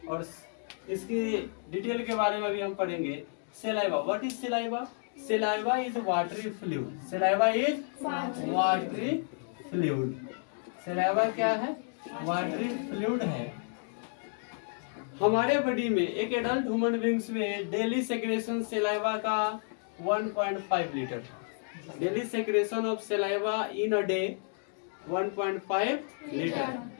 और इसकी डिटेल के बारे में भी हम पढ़ेंगे। saliva, what is saliva? Saliva is watery fluid। saliva is watery fluid। Saliva क्या है? वाटरी फ्लूइड है। हमारे बॉडी में एक एडल्ट ह्यूमन बींग्स में डेली सेक्रेशन सलाइवा का 1.5 litre. Daily secretion of saliva in a day 1.5 litre.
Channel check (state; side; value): silent; right; 57 dB below the other